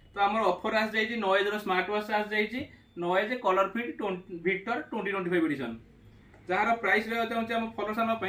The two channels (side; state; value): both; identical; correlation 1.00